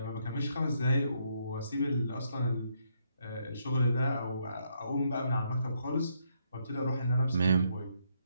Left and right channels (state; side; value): inverted; both; correlation -0.75